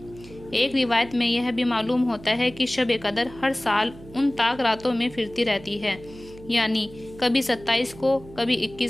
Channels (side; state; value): right; noise; hum, 19 dB below the sound